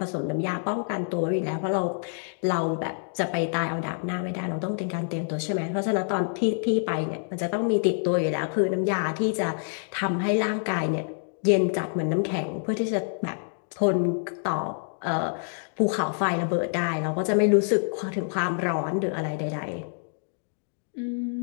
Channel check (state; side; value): silent; right; 60 dB below the other